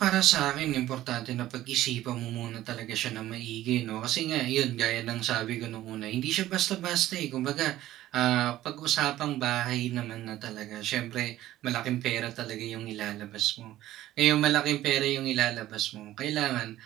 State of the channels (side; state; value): left; quieter; 14.4 dB